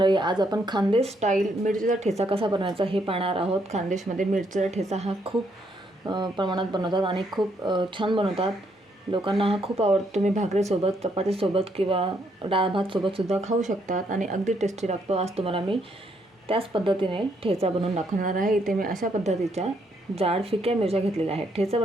आज आपण खानदेश स्टाईल मिरचीचा ठेचा कसा बनवायचा हे पाहणार आहोत. खानदेशमध्ये मिरचीचा ठेचा हा खूप प्रमाणात बनवतात आणि खूप छान बनवतात. लोकांना हा खूप आवडतो. तुम्ही भाकरीसोबत, चपातीसोबत किंवा डाळ भातसोबतसुद्धा खाऊ शकतात आणि अगदी टेस्टी लागतो. आज तुम्हाला मी त्याच पद्धतीने ठेचा बनवून दाखवणार आहे. इथे मी अशा पद्धतीच्या जाड फिक्या मिरच्या घेतलेल्या आहेत. ठेचा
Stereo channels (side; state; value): both; normal; correlation 0.73